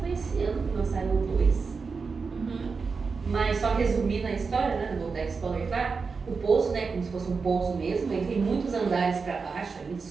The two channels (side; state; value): left; quieter; 4.9 dB